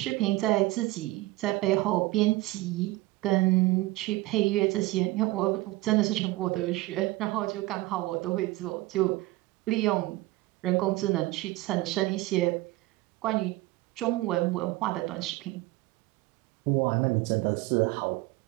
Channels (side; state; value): left; quieter; 19.3 dB